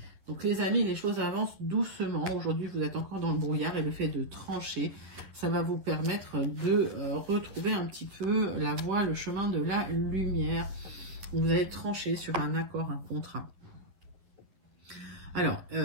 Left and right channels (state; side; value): late; left; 10 ms